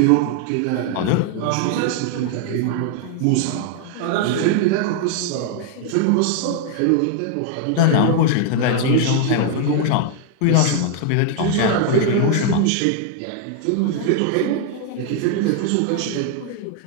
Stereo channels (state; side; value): different; both; correlation 0.00